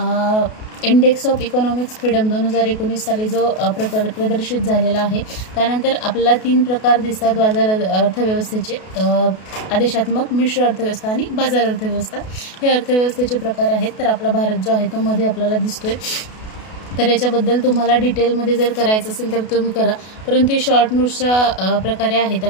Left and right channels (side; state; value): right; late; 32 ms